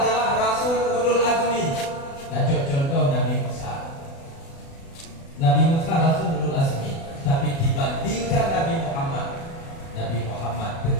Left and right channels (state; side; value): late; right; 36 ms